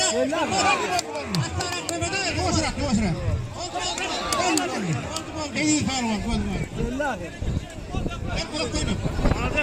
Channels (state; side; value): identical; both; correlation 1.00